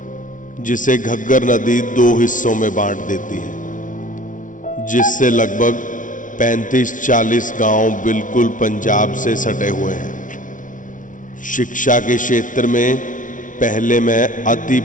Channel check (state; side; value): late; right; 0.38 ms